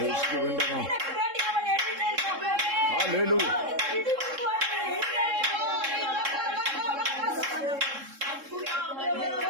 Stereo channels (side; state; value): left; late; 3.7 ms